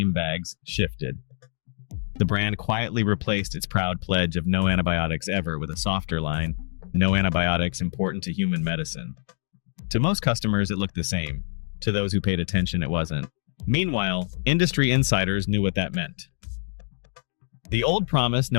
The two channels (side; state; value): right; silent; digital silence